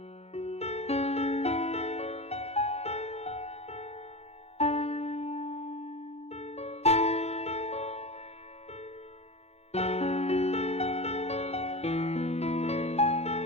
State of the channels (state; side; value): late; right; 0.31 ms